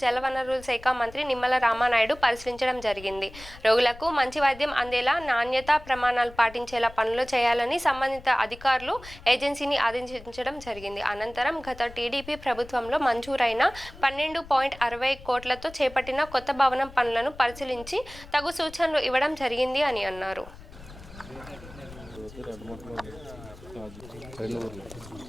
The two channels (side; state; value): left; noise; rumble, 18 dB below the sound